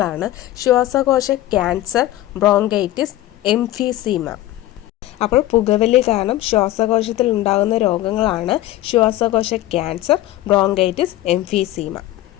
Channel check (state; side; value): quieter; right; 15.1 dB